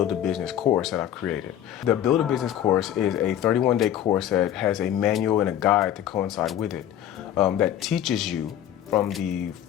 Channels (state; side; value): quieter; right; 10.9 dB